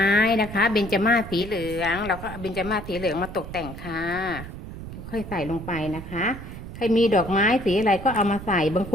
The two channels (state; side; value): noise; right; rumble, 11 dB below the sound